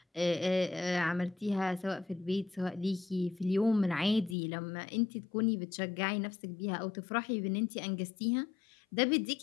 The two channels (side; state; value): right; drops out; at 4.4 s